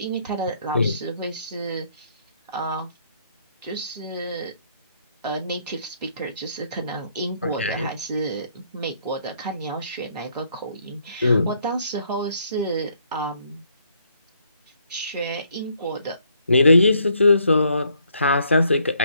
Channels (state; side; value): inverted; both; correlation -0.69